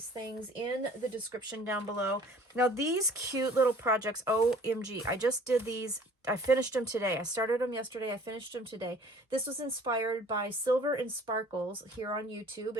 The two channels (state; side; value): normal; both; correlation 0.51